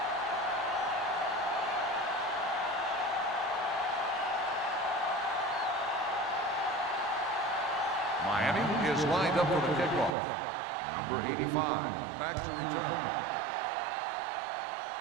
Miami is lined up for the kickoff. Number 85, back to return.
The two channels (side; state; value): left; drops out; at 10.2 s